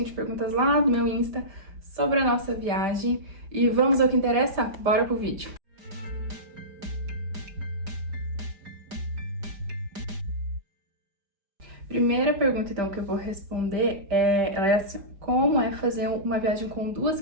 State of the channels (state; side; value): late; left; 5.0 ms